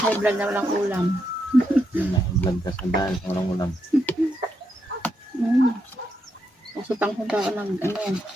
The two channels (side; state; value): both; normal; correlation 0.81